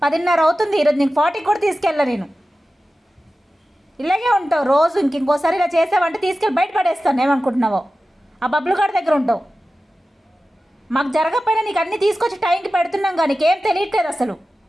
10:30 అవుతుంది ఈరోజు. నీకు 40 కూడా తీసుకెళ్ళా నేను. ఇలాగే ఉంటావు రోజు. ఇంకోసారి ఇలా చేసావంటే తీసుకెళ్ళి బయట పడేస్తాను. ఏమనుకుంటున్నావో ఆ బబ్బులు గారి దగ్గర ఉంటావు. మాకు జరగకపోయినా నీకు అన్నీ తీసుకొచ్చి టైంకి పెడుతున్నాం కానీ నీకేం తెలియట్లేదు అసలు.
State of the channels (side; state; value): both; normal; correlation 0.94